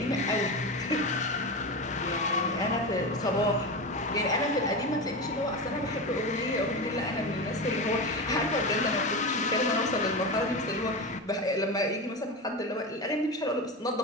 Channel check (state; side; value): normal; both; correlation 0.21